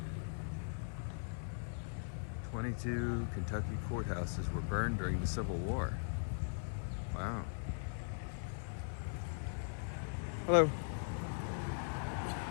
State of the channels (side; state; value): right; silent; 51 dB below the other